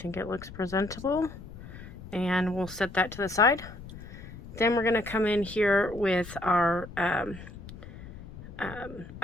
it looks presentable. And we'll set that to the side. Then we're going to come in here with our eye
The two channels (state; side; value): noise; left; rumble, 14 dB below the sound